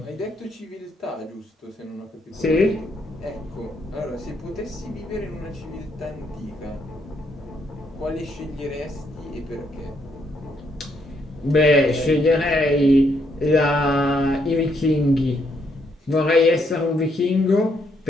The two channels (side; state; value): both; normal; correlation 0.74